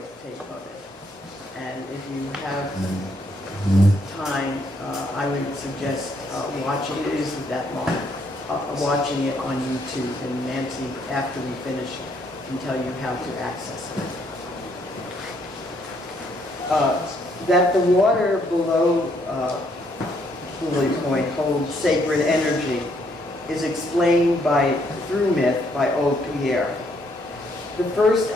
of it. And if you have time, I would suggest watching it. It isn't that long. Watching it on YouTube, and Nancy, after we finish, can tell you how to access it. That the water below Lily Point holds sacred energy is explained through myth by Old Pierre. The first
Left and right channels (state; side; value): normal; both; correlation 0.70